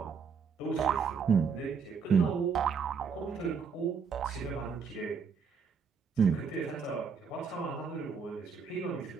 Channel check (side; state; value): left; quieter; 5.9 dB